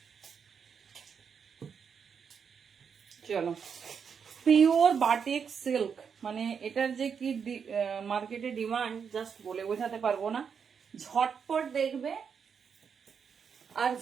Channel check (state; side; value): quieter; left; 6.7 dB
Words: চলো পিওর বাটিক সিল্ক, মানে এটার যে কি মার্কেটে ডিমান্ড জাস্ট বলে বোঝাতে পারবো না। ঝটপট দেখবে আর